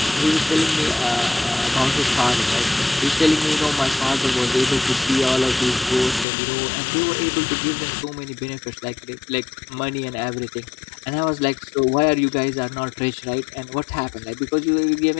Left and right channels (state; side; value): drops out; right; at 6.2 s